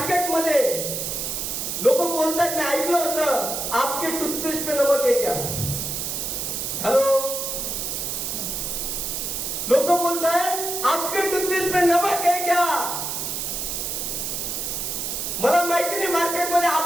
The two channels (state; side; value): noise; right; hiss, 3 dB below the sound